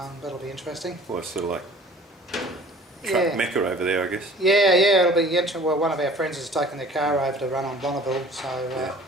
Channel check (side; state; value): both; normal; correlation 0.48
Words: that'll be interesting. Well, it's sort of like truck mecca over there, I guess. Yeah, it'll be interesting. Well, one of our friends has taken their car over to run on Bonneville, so